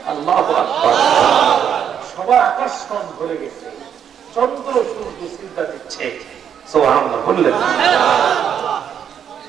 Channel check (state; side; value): quieter; left; 8.6 dB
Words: আল্লাহু আকবার। সবার আকর্ষণ ভরে গেছে, চন্দ্র সূর্য সিজদা দিচ্ছে। সুবহানাল্লাহ বললেন।